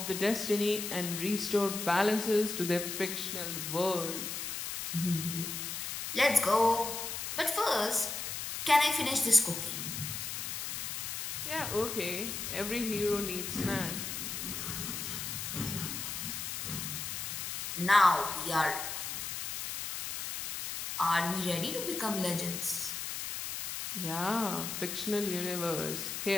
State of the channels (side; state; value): left; noise; hiss, 4 dB below the sound